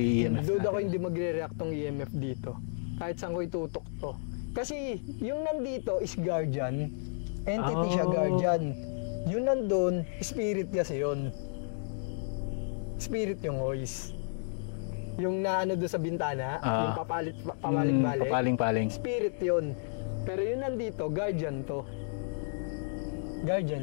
EMF. Doon ako hindi magre-react tong EMF dito. Kahit saan ko itutok to. Kasi yung nandito is guardian. Entity siya, guardian. Yung nandun, spirit kasi yun. Spirit yung voice. Yung naano doon sa bintana, yung pabalik-balik. Paling-paling. Spirit yun. Pero yung nandito, guardian to.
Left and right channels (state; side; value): silent; right; digital silence